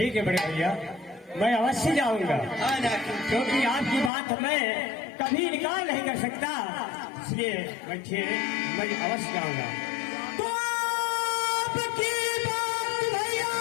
है बड़े भैया, मैं अवश्य जाऊंगा। हाँ नाक्सी, क्योंकि आपकी बात मैं कभी इनकार नहीं कर सकता, इसलिए मैं अवश्य जाऊंगा। तो आपकी बात भैया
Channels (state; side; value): drops out; right; at 4.1 s